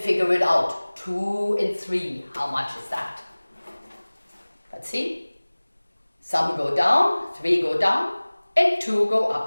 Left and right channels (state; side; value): inverted; both; correlation -1.00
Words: it out. 2 and 3, how much is that? Let's see. Some go down, 3 go down, and 2 go